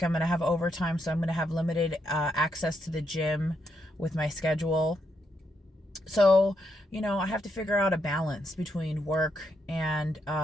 I'm going to have overtime, so I'm going to have limited access to the gym with my schedule. So, I have to figure out a balance between work and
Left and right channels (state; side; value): normal; both; correlation 0.79